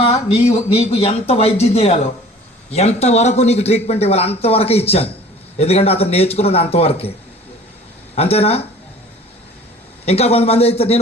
నీకు ఎంత వైద్యం చేయాలో, ఎంతవరకు నీకు ట్రీట్మెంట్ ఇవ్వాలి అంతవరకే ఇచ్చాను. ఎందుకంటే అతను నేర్చుకున్నది అంతవరకే. అంతేనా? ఇంకా కొంతమంది అయితే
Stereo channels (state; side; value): normal; both; correlation 0.47